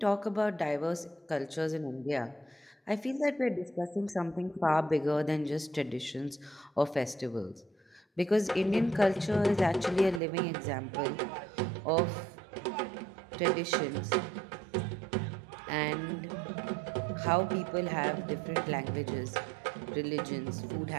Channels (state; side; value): drops out; left; at 10.2 s